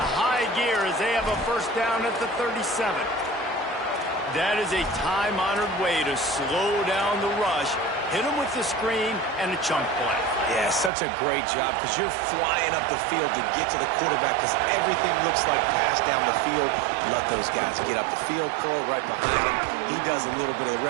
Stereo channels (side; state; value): left; drops out; at 10.9 s